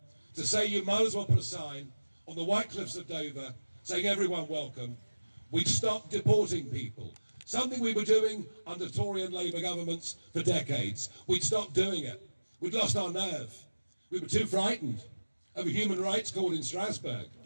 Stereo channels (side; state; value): both; inverted; correlation -1.00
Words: to say you might as well put a sign on the White Cliffs of Dover saying everyone welcome. We'd stop deporting people, something we were doing under Tory and Labour governments for decades. We'd stopped doing it. We'd lost our nerve. We were too frightened of a human rights court in Strasbourg.